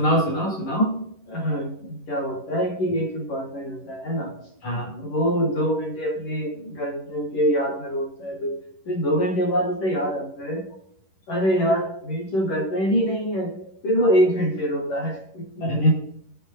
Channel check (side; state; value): right; late; 11 ms